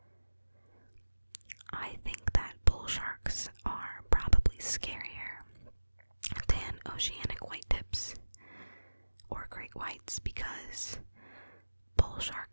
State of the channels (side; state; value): both; inverted; correlation -1.00